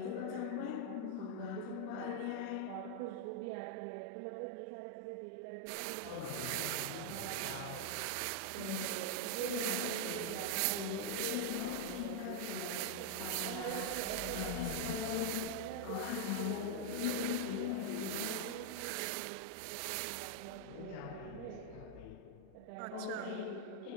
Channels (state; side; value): different; both; correlation 0.00